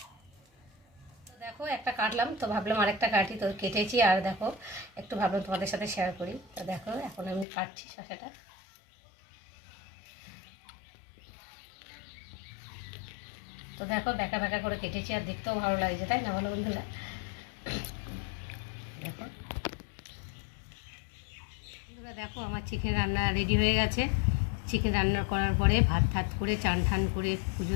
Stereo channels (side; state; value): right; drops out; at 7.5 s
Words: তো দেখো একটা কাটলাম, তো ভাবলাম আরেকটা কাটি, তো কেটেছি। আর দেখো একটু ভাবলাম তোমাদের সাথে শেয়ার করি। তো দেখো এখন আমি কাটছি শসাটা। তো দেখো ব্যাকা ব্যাকা করে কেটেছি, আর দেখতেও ভালো লাগছে, তাই না বলো বন্ধুরা? দেখো বন্ধুরা, দেখো আমার চিকেন রান্না রেডি হয়ে গেছে। চিকেন রান্না করার পরে ভাত ঠাত করে চান ঠান করে